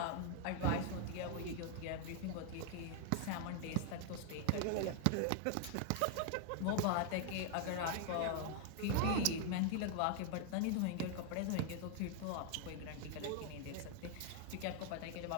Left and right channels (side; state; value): both; different; correlation 0.00